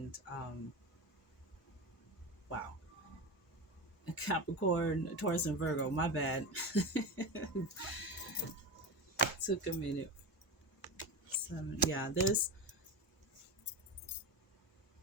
wow, Capricorn, Taurus, and Virgo. My bad. Took a minute. 7. Yeah, there's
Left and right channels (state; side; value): normal; both; correlation 0.21